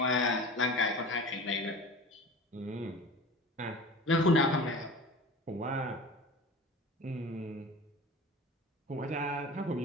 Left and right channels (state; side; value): normal; both; correlation 0.36